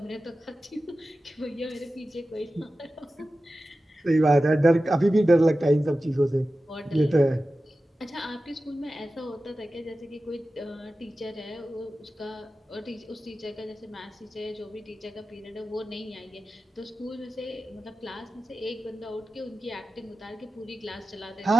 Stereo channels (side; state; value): both; normal; correlation 0.94